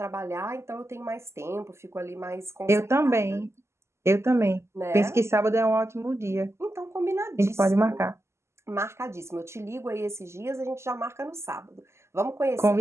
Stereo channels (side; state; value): left; late; 0.13 ms